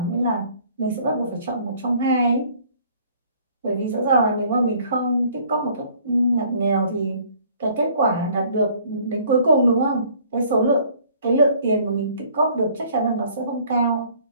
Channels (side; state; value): both; inverted; correlation -0.57